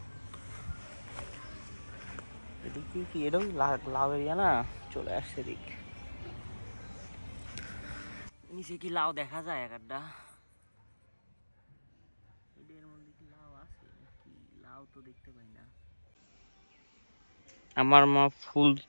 এদিকে কি এটাও লাউ এরিয়া না, চলে আসছে এদিক। নিচে কি লাউ দেখা যায় এক একটা? এদের মধ্যে কি লাউ আছে নাকি? লাউ তো দেখতে পাই না। আমার মা ফুল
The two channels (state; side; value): inverted; both; correlation -1.00